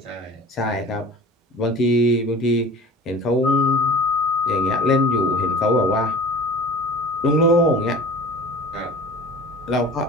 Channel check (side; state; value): both; normal; correlation 0.41